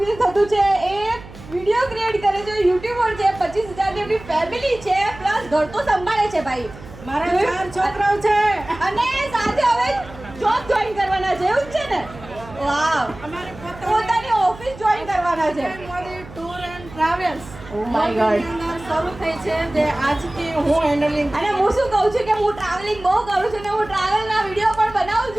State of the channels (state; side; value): noise; right; hum, 17 dB below the sound